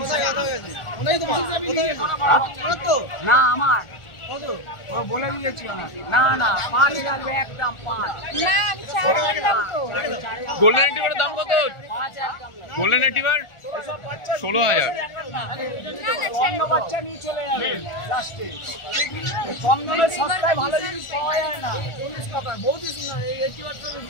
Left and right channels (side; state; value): right; late; 1.4 ms